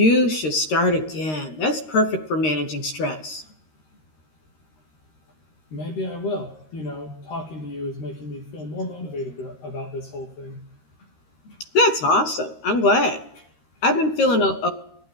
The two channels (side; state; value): right; late; 13 ms